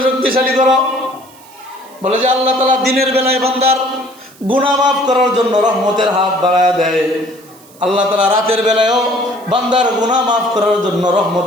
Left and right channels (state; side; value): noise; right; hiss, 25 dB below the sound